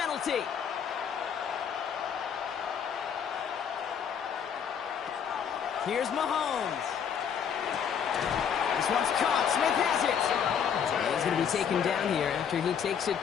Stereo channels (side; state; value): right; quieter; 7.7 dB